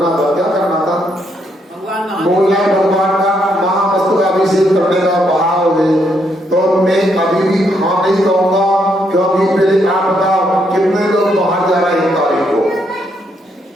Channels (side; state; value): both; normal; correlation 0.75